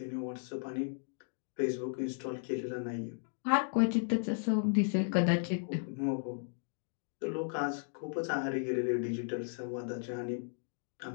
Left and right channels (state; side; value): silent; right; digital silence